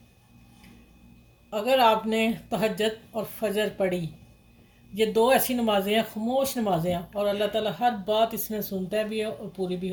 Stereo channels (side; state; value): both; identical; correlation 1.00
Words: अगर आपने तहज्जुद और फजर पढ़ी, ये दो ऐसी नमाज़ें हैं, खामोश नमाज़ें हैं, और अल्लाह ताला हर बात इसमें सुनता भी है और पूरी भी